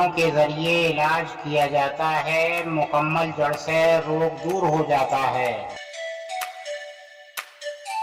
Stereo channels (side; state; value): both; identical; correlation 1.00